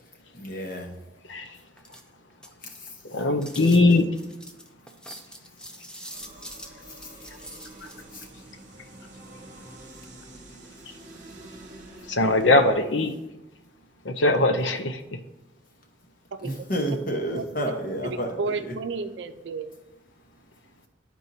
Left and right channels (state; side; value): normal; both; correlation 0.25